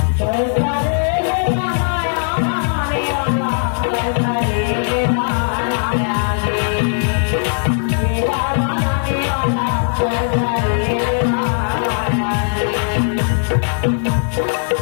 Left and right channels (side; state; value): right; silent; 68 dB below the other